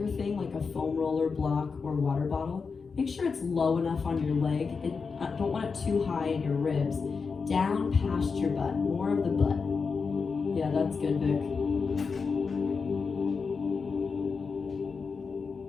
thing, like a foam roller, block, or water bottle, make sure it's low enough on your leg. Don't want it too high in your ribs. Down past your butt, more of the butt. Yeah, that's good, Vic.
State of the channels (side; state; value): right; quieter; 5.1 dB